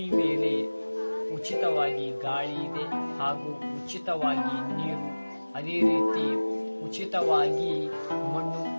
ಮೇಲೆ ಉಚಿತವಾಗಿ ಗಾಳಿ ಇದೆ ಹಾಗೂ ಉಚಿತವಾಗಿ ನೀರು, ಅದೇ ರೀತಿ ಉಚಿತವಾಗಿ ಮಣ್ಣು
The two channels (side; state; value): both; inverted; correlation -1.00